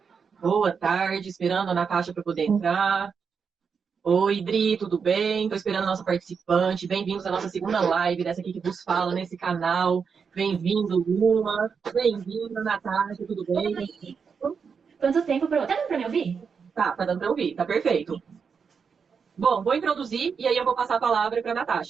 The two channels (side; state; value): left; quieter; 6.0 dB